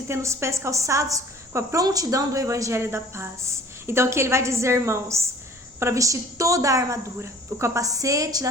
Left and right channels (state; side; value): normal; both; correlation 0.50